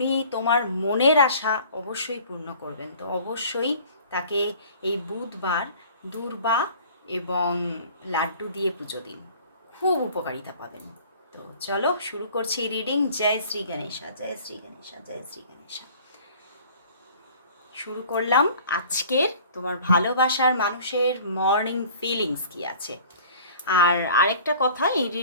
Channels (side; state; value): both; inverted; correlation -0.48